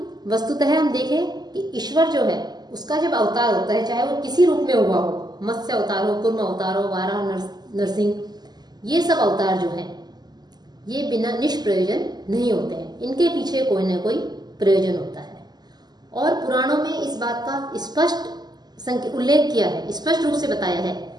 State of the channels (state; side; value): late; left; 0.20 ms